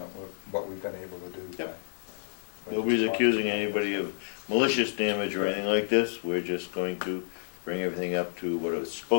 what we've been able to do. Yep. by Nobody's responding. accusing anybody of malicious damage or anything like this. We're just going to bring everything up to what it's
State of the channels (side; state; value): right; silent; 58 dB below the other